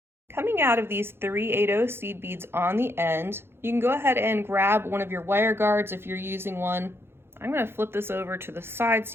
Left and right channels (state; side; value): late; left; 0.11 ms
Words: Coming out of these 3 8/0 seed beads on the end, you can go ahead and grab one of your wire guards if you're using one. I'm going to flip this over to the side